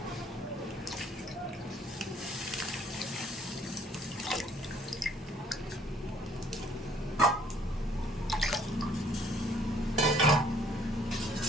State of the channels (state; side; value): normal; both; correlation 0.61